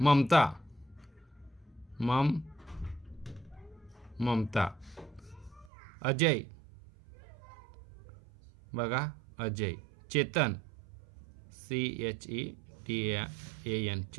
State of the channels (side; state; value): left; drops out; at 5.7 s